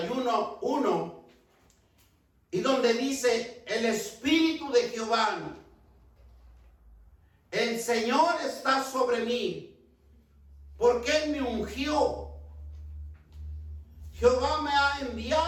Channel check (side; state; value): both; identical; correlation 1.00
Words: y donde dice, el Espíritu de Jehová, el Señor está sobre mí, porque Él me ungió. Jehová me ha